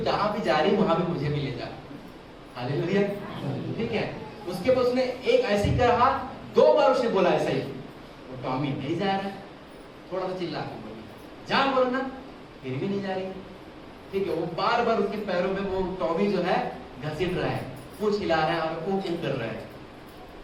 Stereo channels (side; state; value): both; identical; correlation 1.00